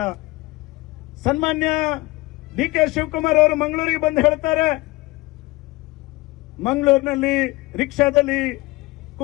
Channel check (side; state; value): right; quieter; 21.4 dB